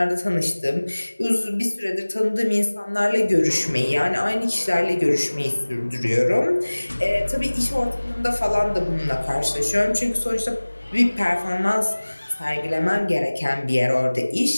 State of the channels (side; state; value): both; inverted; correlation -1.00